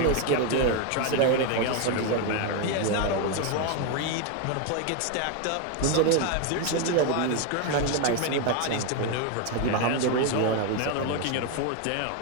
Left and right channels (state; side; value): different; both; correlation 0.01